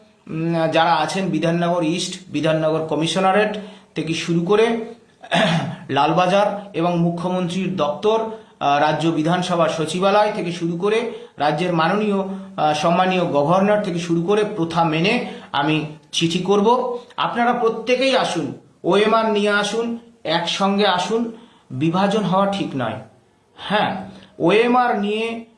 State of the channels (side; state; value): both; identical; correlation 1.00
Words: যারা আছেন, বিধাননগর ইস্ট, বিধাননগর কমিশনারেট থেকে শুরু করে লালবাজার এবং মুখ্যমন্ত্রীর দপ্তর, রাজ্য বিধানসভার সচিবালয় থেকে শুরু করে রাজ্যের মাননীয় সম্মানীয় গভর্নর থেকে শুরু করে প্রথা মেনে আমি চিঠি করব। আপনারা প্রত্যেকেই আসুন, ওএমআর নিয়ে আসুন, একসঙ্গে আসুন। বিভাজন হওয়া ঠিক নয়। হ্যাঁ, ওএমআর নিয়ে